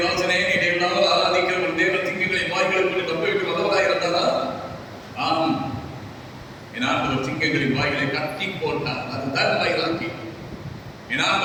வாசனே, நீ நாள் ஆராதிக்கிற ஒரு தேவ சிங்கங்களை வாய்களுக்கு தப்புவிக்க வல்லவராய் இருந்தாரா? ஆம், என் ஆண்டவர் சிங்கங்களின் வாய்களை கட்டி போட்டார். அதுதான் வைராக்கி. என்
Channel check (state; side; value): identical; both; correlation 1.00